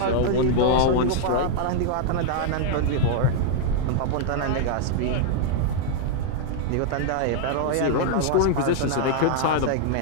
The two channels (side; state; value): both; different; correlation -0.01